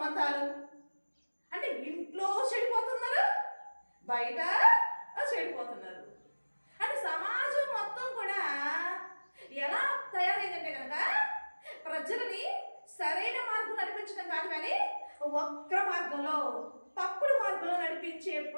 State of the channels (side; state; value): both; inverted; correlation -1.00